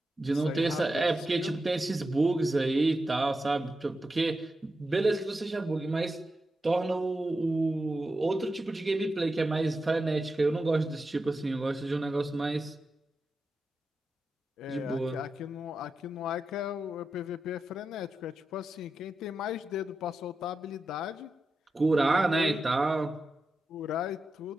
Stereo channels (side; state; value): both; normal; correlation 0.90